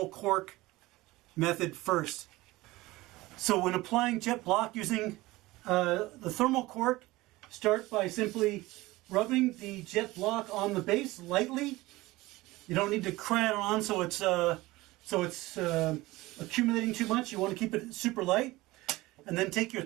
cork method first. So when applying Jet Bloc using the thermal cork, start by simply rubbing the Jet Bloc on the base lightly. You don't need to cram it on so it's accumulating too much. You want to keep it super light. And then take your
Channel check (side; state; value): left; quieter; 19.5 dB